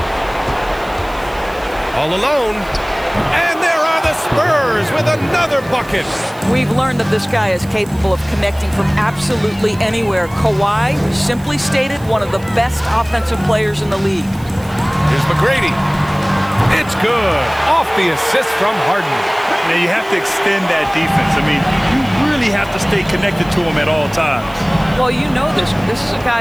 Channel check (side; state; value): right; noise; hiss, 23 dB below the sound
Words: All alone. And there are the Spurs with another bucket. We've learned that this guy is capable of connecting from absolutely anywhere. Kawhi, simply stated, one of the best offensive players in the league. Here's McGrady. It's good. Off the assist from Harden. Now you have to extend that defense. I mean, you really have to stay connected to him at all times. Well, you know this. This is a